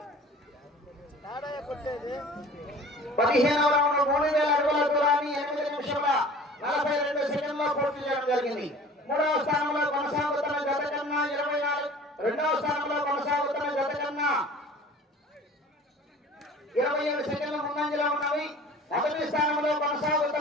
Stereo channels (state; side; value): normal; both; correlation 0.45